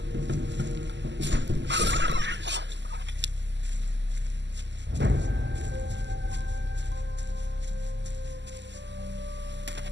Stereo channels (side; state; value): left; late; 0.52 ms